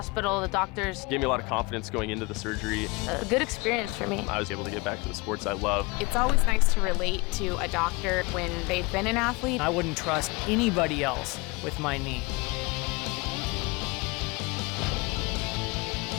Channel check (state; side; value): quieter; right; 25.6 dB